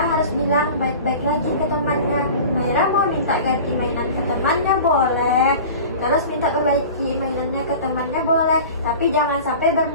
harus bilang baik-baik lagi ke temannya. Maira mau minta ganti mainan ke temannya boleh, terus minta perbaiki mainannya ke temannya boleh, tapi jangan sampai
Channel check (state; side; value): inverted; both; correlation -0.38